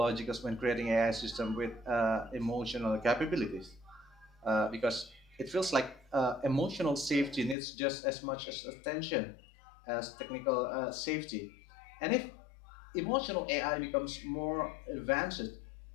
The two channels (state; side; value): drops out; right; at 7.6 s